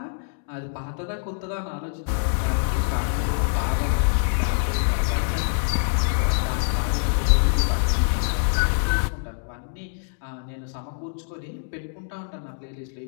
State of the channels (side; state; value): right; silent; digital silence